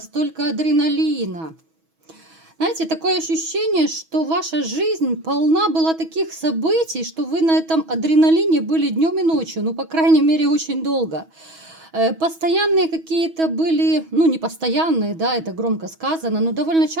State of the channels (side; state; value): left; late; 6.2 ms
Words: адреналина. Знаете, такое ощущение, что ваша жизнь полна была таких событий, что вы на этом адреналине были днем и ночью, ну, по крайней мере, очень долго. Постоянные какие-то были, ну, не постоянные, да, это громко сказано, но довольно